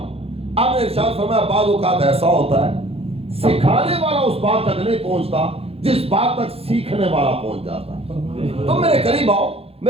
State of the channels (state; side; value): late; left; 0.29 ms